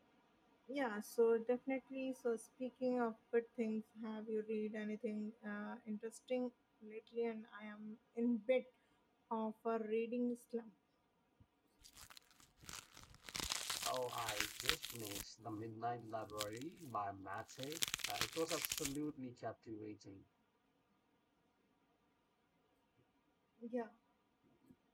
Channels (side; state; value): both; identical; correlation 1.00